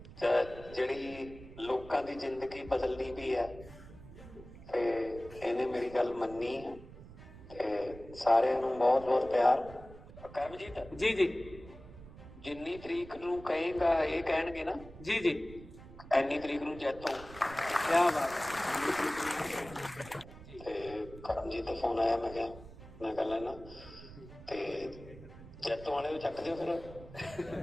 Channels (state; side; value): noise; right; rumble, 17 dB below the sound